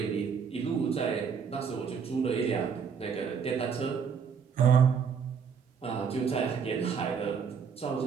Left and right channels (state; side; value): quieter; left; 6.5 dB